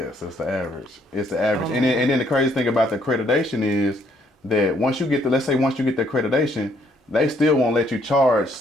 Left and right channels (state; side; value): normal; both; correlation 0.68